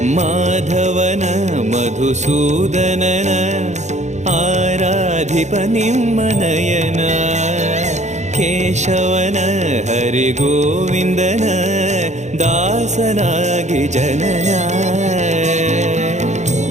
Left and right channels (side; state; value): left; late; 0.34 ms